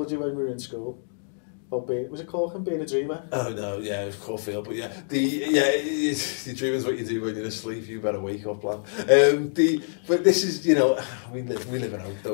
you when we were in school. Was it Corkin being a dreamer? Oh no, yeah, it was Caulfield, but yeah, the dreaming's what you do when you're asleep. You better wake up, lad. But this is, we live in hope,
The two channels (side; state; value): right; silent; digital silence